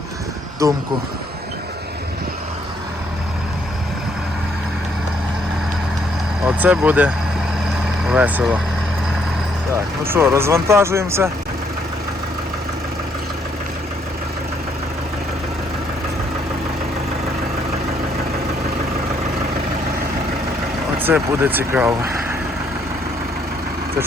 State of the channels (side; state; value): both; normal; correlation 0.69